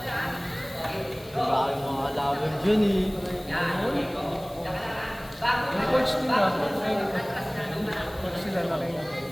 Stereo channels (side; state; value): left; noise; hiss, 23 dB below the sound